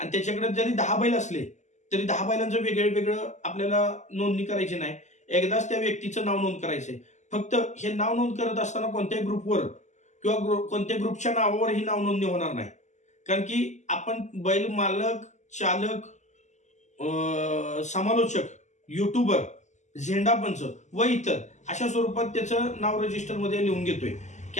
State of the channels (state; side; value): late; right; 0.34 ms